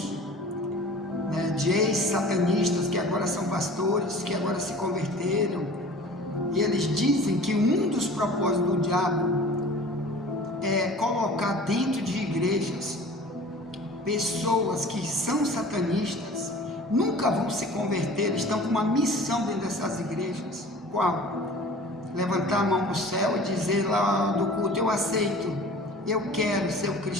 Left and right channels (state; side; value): normal; both; correlation 0.43